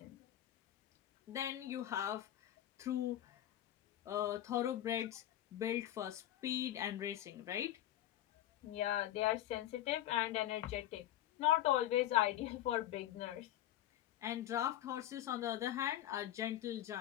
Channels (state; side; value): quieter; right; 12.9 dB